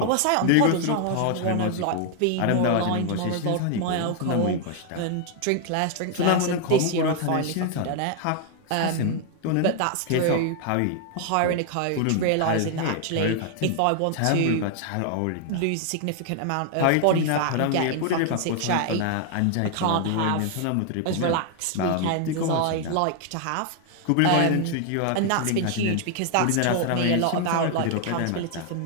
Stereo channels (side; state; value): both; different; correlation 0.00